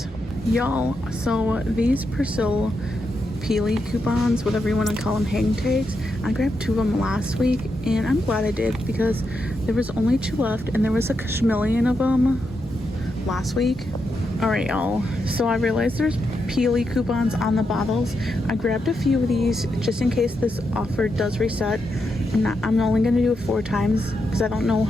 Y'all, so these Persil Peely coupons, whatever you want to call them, hang tags, I grabbed 2 of them last week, and I'm glad I did because there was only 2 left, and there was a million of them last week. All right, y'all, so I realized there's Peely coupons on the bottles. I grabbed a few of these just in case this offer does reset. I'm only going to do it 4 times because I don't know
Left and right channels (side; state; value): both; normal; correlation 0.84